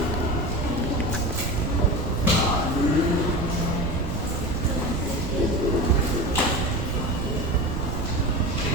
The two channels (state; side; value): noise; right; rumble, 4 dB below the sound